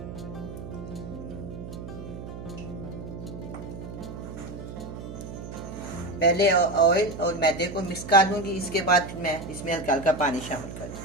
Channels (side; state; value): right; noise; hum, 10 dB below the sound